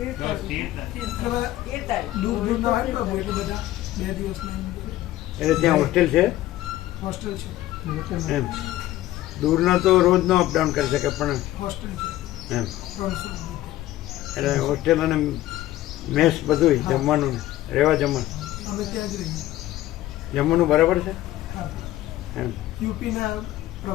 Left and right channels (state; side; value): quieter; right; 15.1 dB